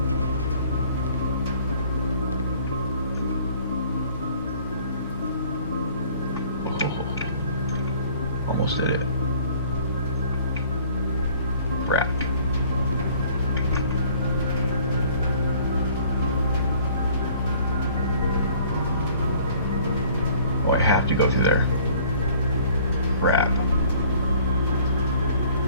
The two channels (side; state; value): both; inverted; correlation -0.54